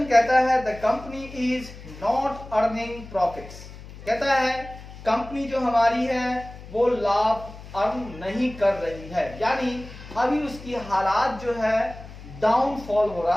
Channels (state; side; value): noise; left; hum, 15 dB below the sound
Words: कहता है the company is not earning profits. कहता है कंपनी जो हमारी है वो लाभ अर्न नहीं कर रही है, यानी अभी उसकी हालात जो है डाउनफॉल हो